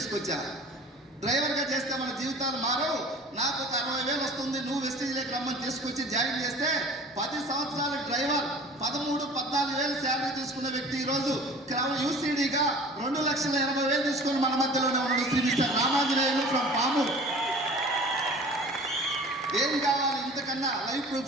డ్రైవర్గా చేస్తే మన జీవితాలు మారవు. నాకు ఒక 60,000 వస్తుంది, నువ్వు వెస్టీజ్లోకి రమ్మని తీసుకొచ్చి జాయిన్ చేస్తే 10 సంవత్సరాల డ్రైవర్ 13-14,000 శాలరీ తీసుకున్న వ్యక్తి ఈరోజు UCDగా 2,80,000 తీసుకొని మన మధ్యలోనే ఉన్నాడు. Shri mister Ramanjaneyulu from Pamuru. ఏం కావాలి ఇంతకన్నా? Life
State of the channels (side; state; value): both; normal; correlation 0.43